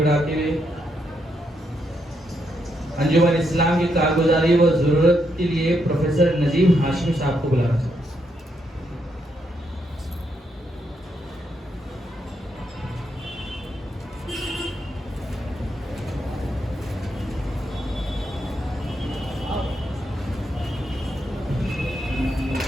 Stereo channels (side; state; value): both; normal; correlation 0.79